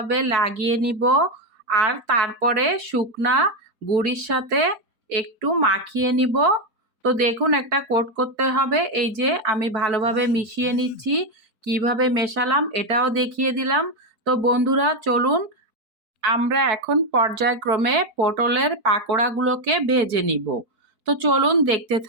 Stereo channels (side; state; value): left; late; 4.6 ms